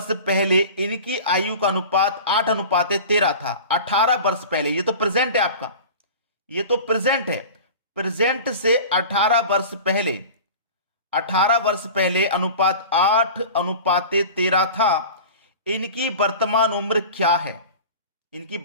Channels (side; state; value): both; inverted; correlation -0.36